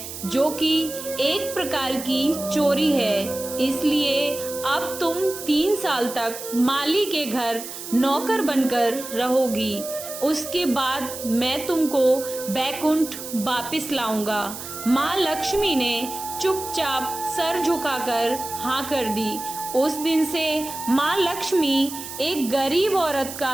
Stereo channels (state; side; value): noise; right; hiss, 10 dB below the sound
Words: जो कि एक प्रकार की चोरी है, इसलिए अब तुम 3 साल तक माली के घर नौकर बनकर रहोगी। उसके बाद मैं तुमको बैकुंठ वापस लाऊंगा। माँ लक्ष्मी ने चुपचाप सर झुकाकर हाँ कर दी। उस दिन से माँ लक्ष्मी एक गरीब औरत